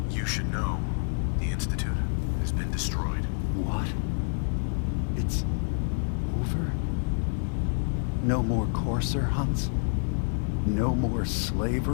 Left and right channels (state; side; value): silent; right; 59 dB below the other